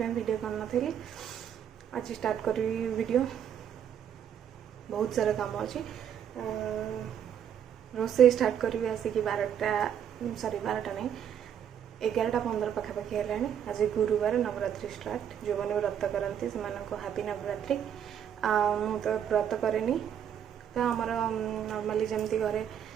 वीडियो करना थी। आज स्टार्ट करी वीडियो। बहुत सारा काम अच्छी। रोसे स्टार्ट करी आसिक 12टा सॉरी 12टा नहीं 11:15 पाखापाखि है। आज गुरुवार नवरात्रि स्टार्ट। जो मैंने व्रत करती से हापी नवरात्रि। मु तो व्रत करेनी तो आमर नॉर्मली जमती घरे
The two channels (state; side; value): quieter; left; 9.0 dB